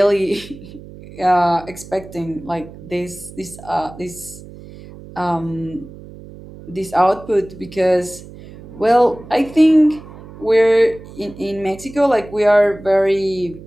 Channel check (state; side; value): noise; right; hum, 17 dB below the sound